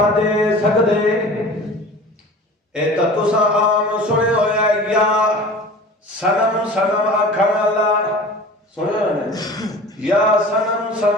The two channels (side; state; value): both; normal; correlation 0.40